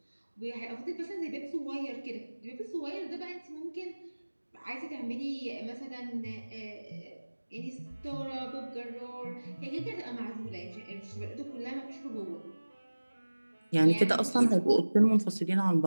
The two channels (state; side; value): inverted; both; correlation -1.00